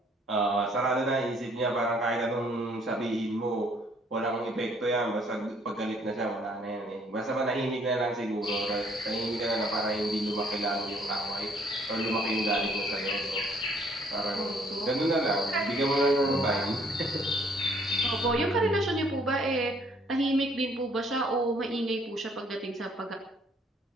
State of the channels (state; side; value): normal; both; correlation 0.63